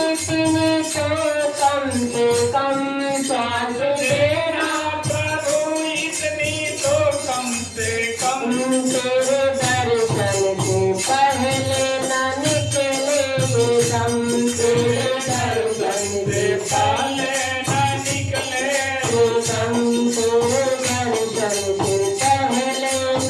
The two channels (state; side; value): identical; both; correlation 1.00